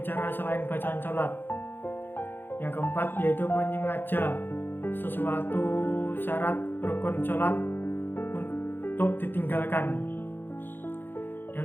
selain bacaan sholat. Yang keempat yaitu menyengaja sesuatu syarat rukun sholat untuk ditinggalkan.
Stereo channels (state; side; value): late; right; 0.098 ms